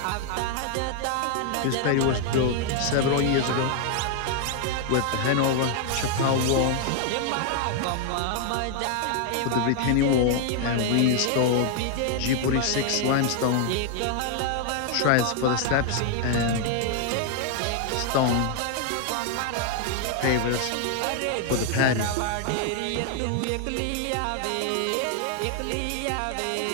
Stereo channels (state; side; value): different; both; correlation 0.00